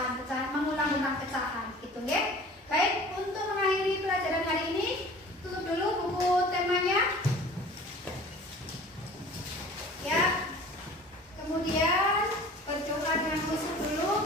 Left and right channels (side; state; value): both; normal; correlation 0.44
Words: mengulang tentang pecahan gitu ya. Baik, untuk mengakhiri pelajaran hari ini tutup dulu buku temanya ya. Kemudian berdoa dengan khusyuk dulu,